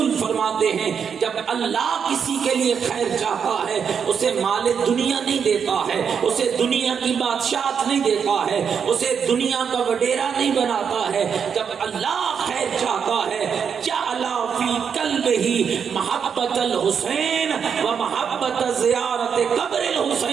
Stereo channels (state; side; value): quieter; left; 7.0 dB